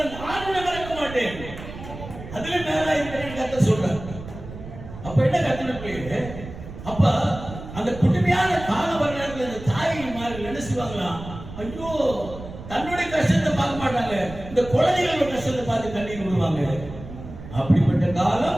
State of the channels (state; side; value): noise; right; rumble, 13 dB below the sound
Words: நான் உன்னை மறக்க மாட்டேன். அதுல மேல இருக்கிறேன் கத்த சொல்றேன். அப்ப என்ன கத்துட்டு அப்ப அந்த குடுமையான கால வரலாறுல அந்த தாய்மார்கள் என்ன செய்வாங்களாம், ஐயோ தன்னுடைய கஷ்டத்தை பார்க்க மாட்டாங்க, இந்த குழந்தைகளோட கஷ்டத்தை பார்த்து கண்ணீர் விடுவாங்க. அப்படிப்பட்ட